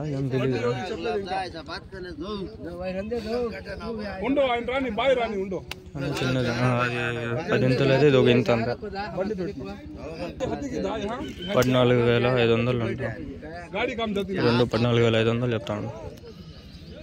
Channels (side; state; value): both; identical; correlation 1.00